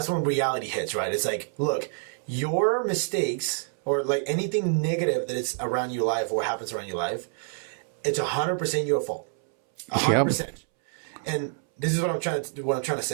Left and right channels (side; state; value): left; silent; 60 dB below the other